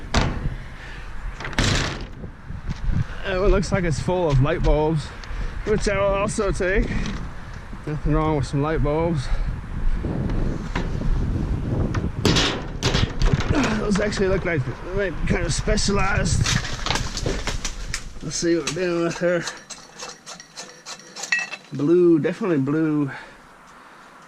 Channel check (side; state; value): both; identical; correlation 1.00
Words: It looks like it's full of light bulbs, which I will also take. Nothing wrong with some light bulbs. Those actually look like they might be kind of specialized. Let's see what we're dealing with here. Blue, definitely blue.